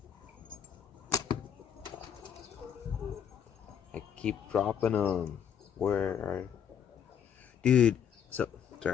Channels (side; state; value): right; quieter; 8.4 dB